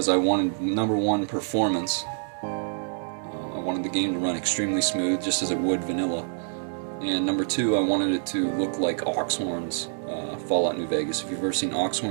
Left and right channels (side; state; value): left; silent; digital silence